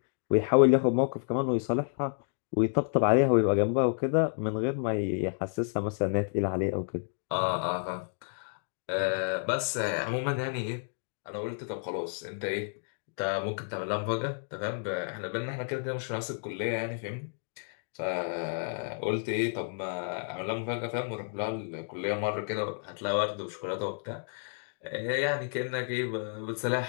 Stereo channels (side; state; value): right; silent; digital silence